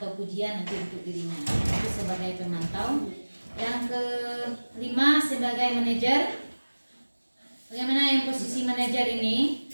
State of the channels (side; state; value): both; inverted; correlation -1.00